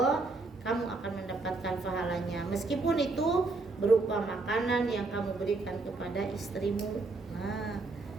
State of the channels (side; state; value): left; quieter; 3.5 dB